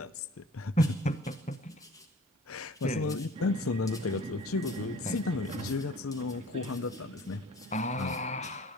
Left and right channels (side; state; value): both; normal; correlation 0.49